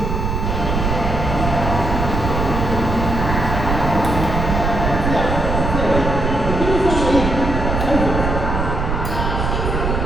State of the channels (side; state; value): right; noise; rumble, 2 dB below the sound